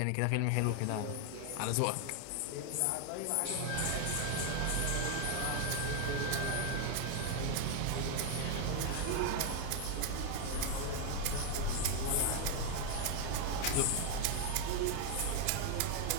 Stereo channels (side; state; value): both; different; correlation 0.00